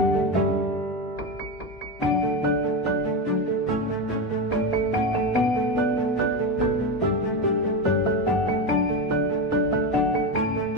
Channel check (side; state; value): both; normal; correlation 0.16